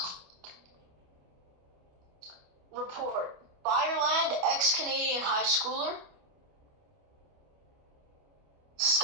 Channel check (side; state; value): left; late; 28 ms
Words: Report. Fireland, ex-Canadian high schooler.